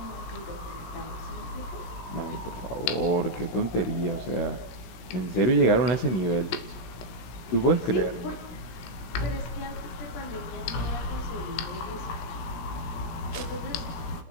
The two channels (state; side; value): late; right; 17 ms